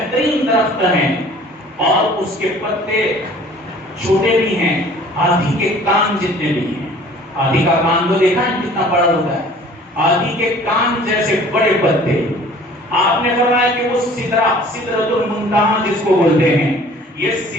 درخت ہے اور اس کے پتے چھوٹے بھی ہیں، ہاتھی کے کان جتنے بھی ہیں. ہاتھی کا کان تو دیکھا ہے کتنا بڑا ہوتا ہے، ہاتھی کے کان جیسے بڑے پتے. آپ نے فرمایا کہ وہ سدرۃ المنتہا جس کو بولتے ہیں، یہ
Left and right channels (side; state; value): both; normal; correlation 0.50